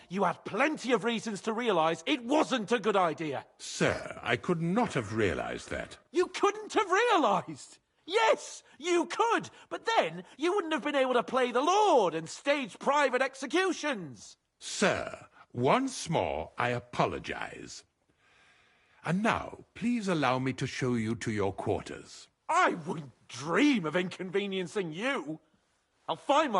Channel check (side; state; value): both; identical; correlation 1.00